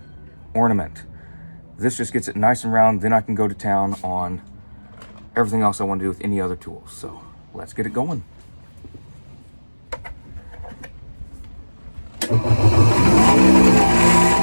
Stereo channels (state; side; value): inverted; both; correlation -1.00